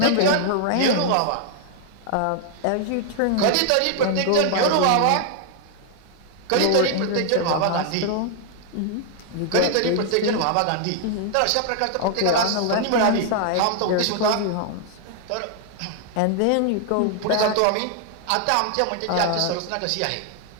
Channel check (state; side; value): different; both; correlation 0.00